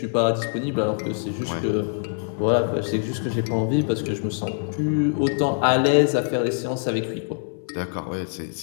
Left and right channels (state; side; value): silent; right; 63 dB below the other